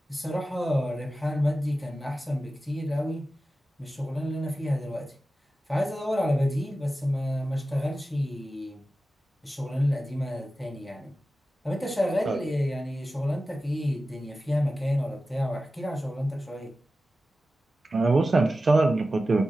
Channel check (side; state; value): both; normal; correlation 0.94